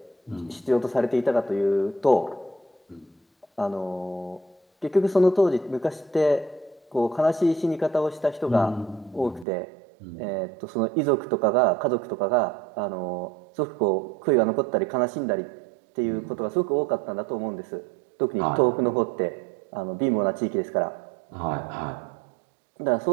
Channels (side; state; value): left; drops out; at 9.5 s